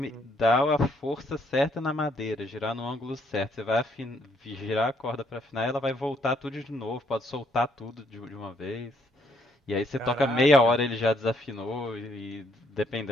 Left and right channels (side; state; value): both; normal; correlation 0.69